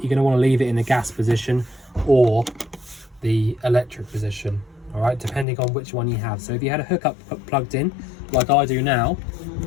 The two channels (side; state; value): right; drops out; at 5.5 s